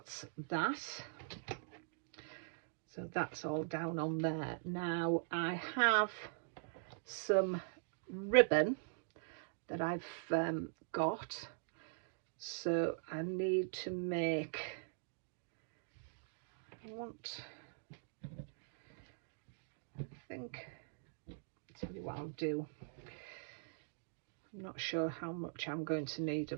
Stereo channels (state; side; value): silent; left; digital silence